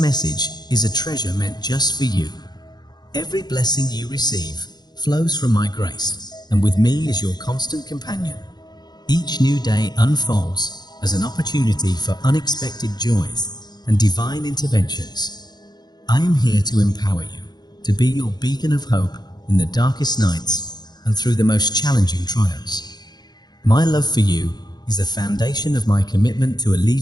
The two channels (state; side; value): late; right; 0.20 ms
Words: is a treasure meant just for you. Every blessing you receive flows from my grace, and with me is your constant companion. Each new day unfolds as an opportunity for unexpected joys and divine interventions. I am here to empower you, to be your beacon of hope in the darkest nights and through the most challenging trials. My love for you is the foundation of my commitment to